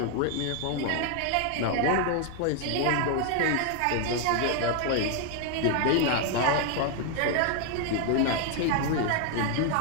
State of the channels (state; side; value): different; both; correlation 0.00